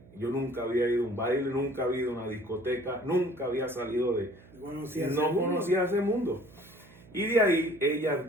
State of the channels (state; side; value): noise; right; hum, 23 dB below the sound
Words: Yo nunca había ido a un baile, nunca había ido a una discoteca, nunca había salido no conocía ese mundo. Y de ahí ella